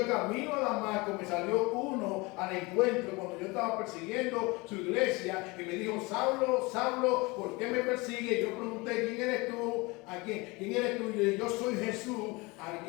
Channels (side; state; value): right; quieter; 25.0 dB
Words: camino a Damasco me salió uno al encuentro cuando yo estaba persiguiendo su iglesia y me dijo: Saulo, Saulo, ¿por qué me persigue? Yo pregunté: ¿quién eres tú? ¿A quién eres tú? Y yo dije: yo soy Jesús al